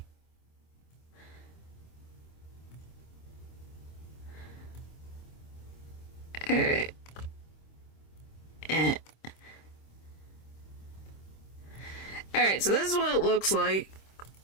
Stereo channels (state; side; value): late; right; 26 ms